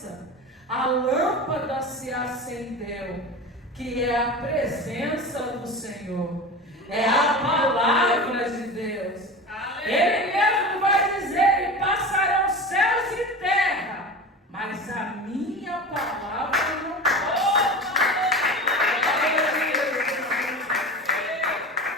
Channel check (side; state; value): both; normal; correlation 0.31